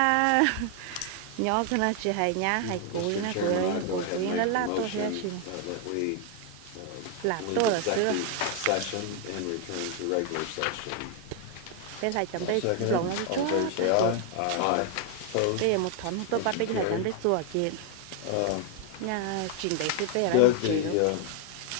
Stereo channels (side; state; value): both; different; correlation 0.00